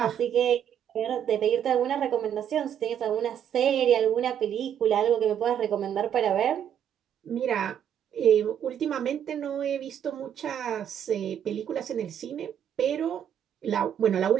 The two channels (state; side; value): quieter; left; 9.3 dB